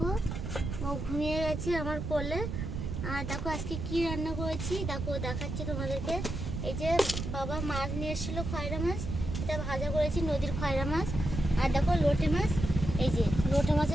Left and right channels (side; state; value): right; noise; rumble, 4 dB below the sound